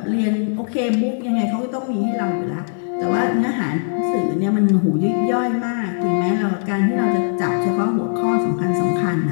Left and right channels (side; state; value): right; silent; digital silence